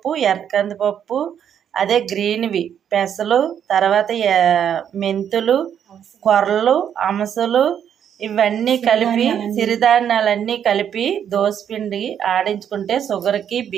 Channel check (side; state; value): left; quieter; 8.9 dB